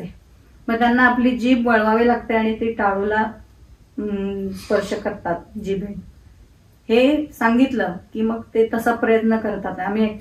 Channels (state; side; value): identical; both; correlation 1.00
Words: मग त्यांना आपली जीभ वळवावी लागते आणि ती टाळूला स्पर्श करतात जिभे. हे सांगितलं की मग ते तसा प्रयत्न करतात. आम्ही